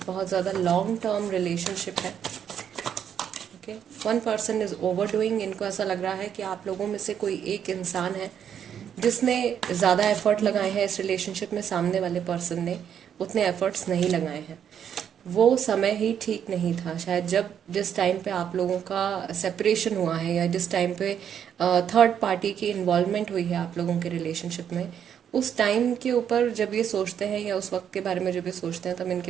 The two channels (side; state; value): left; quieter; 8.7 dB